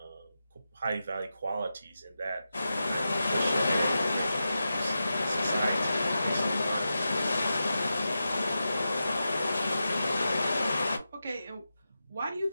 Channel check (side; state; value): both; inverted; correlation -0.91